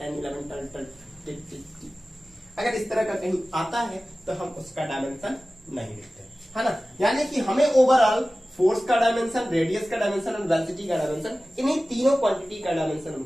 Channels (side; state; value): both; normal; correlation 0.96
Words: 11 12 13 अगर इस तरह का कहीं आता है तो हम उसका डायमेंशन नहीं लिखते, है ना। यानी कि हमें ओवरऑल फोर्स का डायमेंशन, रेडियस का डायमेंशन और वेलोसिटी का डायमेंशन, इन्हीं तीनों क्वांटिटी का डायमेंशन